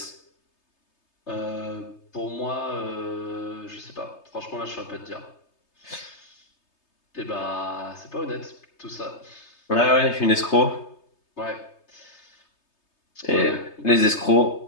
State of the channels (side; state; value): right; late; 3.3 ms